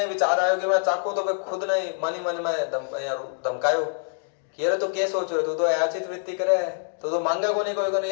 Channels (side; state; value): right; silent; digital silence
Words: विचार आयो कि मैं चाखूं, तो मैं खुद नहीं मन ही मन में धमकायो कि अरे तो क्या सोच रहे तू तो अयाचित वृत्ति करे है, तो मांगे को नहीं कोई